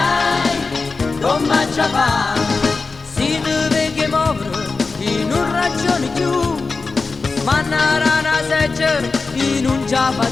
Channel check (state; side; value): quieter; right; 4.1 dB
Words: come ci fa? Si deve che muovere in un ragione più, ma una rana seggiare in un già